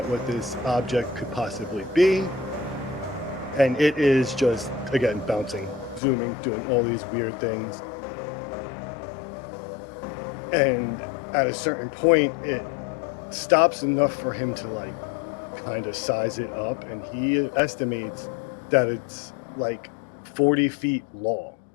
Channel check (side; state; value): right; drops out; at 6.0 s